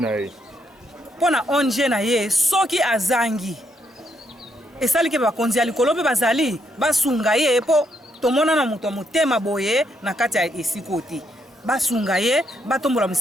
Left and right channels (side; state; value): both; normal; correlation 0.76